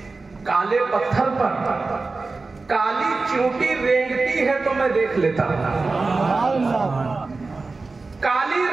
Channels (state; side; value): quieter; left; 3.8 dB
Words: کالے پتھر پر کالی چیونٹی رینگتی ہے تو میں دیکھ لیتا ہوں۔ کالی